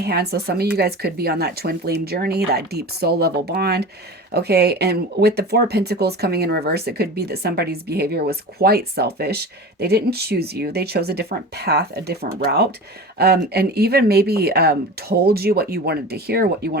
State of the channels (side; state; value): both; normal; correlation 0.33